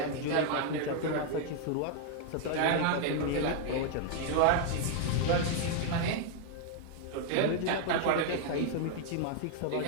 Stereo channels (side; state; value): both; different; correlation 0.00